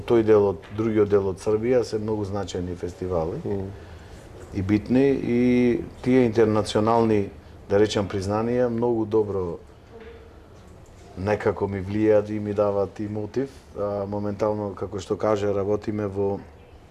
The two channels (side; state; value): both; identical; correlation 1.00